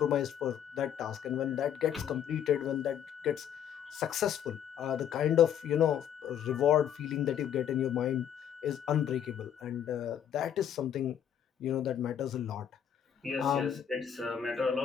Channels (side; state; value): right; quieter; 9.2 dB